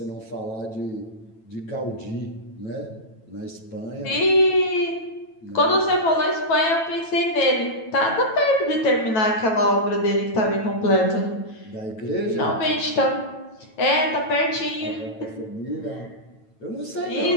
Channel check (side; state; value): right; late; 9.1 ms